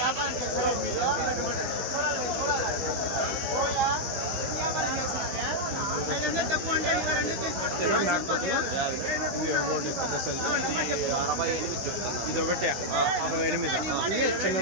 చూడొచ్చు మేకపోతులు ఇవి ఒకటి పెద్ద సైజు, ఇది ఒకటి 68, ఇవి చిన్న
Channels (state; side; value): late; left; 16 ms